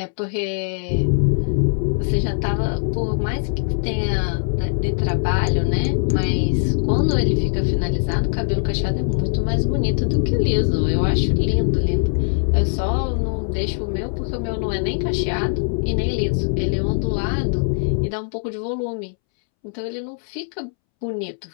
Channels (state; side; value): silent; right; 65 dB below the other